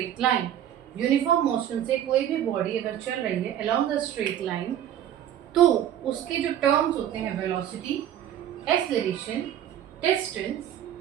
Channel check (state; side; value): quieter; left; 10.8 dB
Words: line, uniform motion से कोई भी बॉडी अगर चल रही है अलोंग द स्ट्रेट लाइन, तो उसके जो टर्म्स होते हैं velocity, acceleration, distance